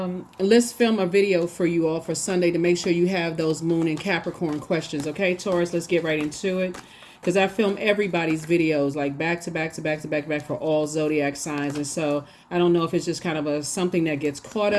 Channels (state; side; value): identical; both; correlation 1.00